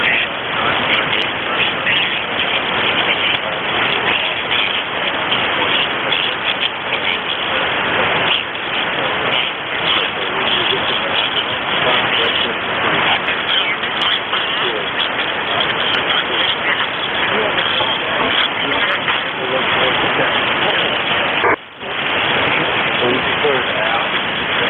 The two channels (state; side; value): identical; both; correlation 1.00